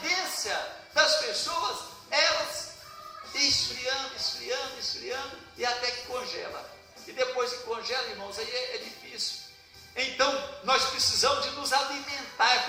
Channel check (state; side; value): identical; both; correlation 1.00